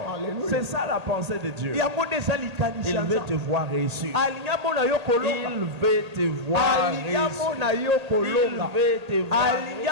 C'est ça la pensée de Dieu. Il veut te voir réussir. Il veut te voir réussir.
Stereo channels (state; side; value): late; left; 1.8 ms